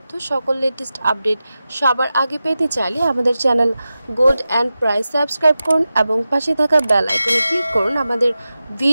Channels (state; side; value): inverted; both; correlation -0.93